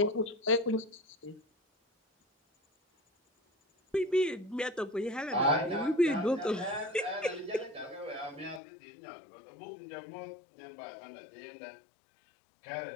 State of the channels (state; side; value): drops out; right; at 8.6 s